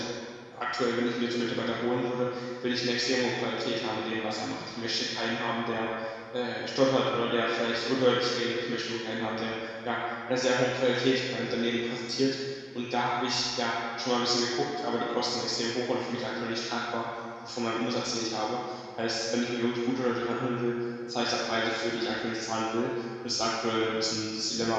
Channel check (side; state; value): both; identical; correlation 1.00